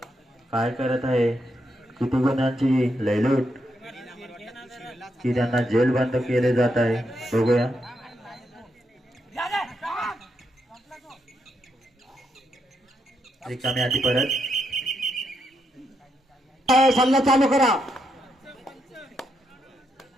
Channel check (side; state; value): both; normal; correlation 0.80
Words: काय करत आहे. किती गुणांची लयलूट की त्यांना जेल बंद केले जात आहे बघूया. रिकामी आधी परत सामना चालू करा.